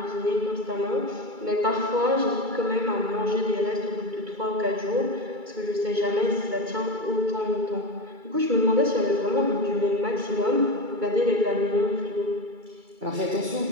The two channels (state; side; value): late; left; 2.3 ms